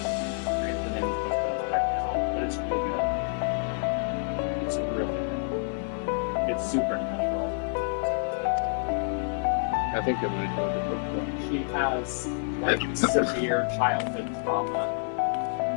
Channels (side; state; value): right; silent; 57 dB below the other